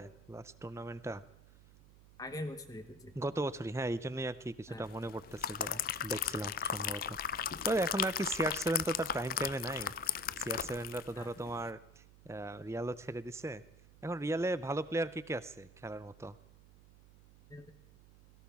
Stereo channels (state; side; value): noise; right; hum, 23 dB below the sound